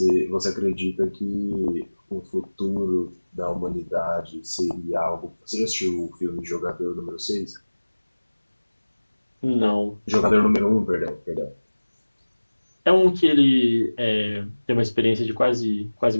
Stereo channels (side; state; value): both; inverted; correlation -1.00